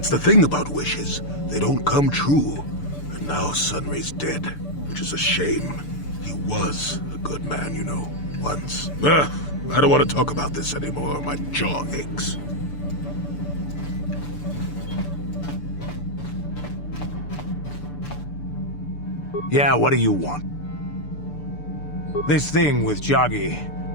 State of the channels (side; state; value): right; late; 6.8 ms